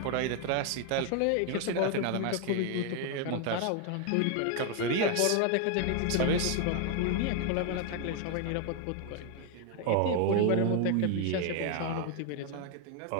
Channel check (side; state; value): both; different; correlation 0.01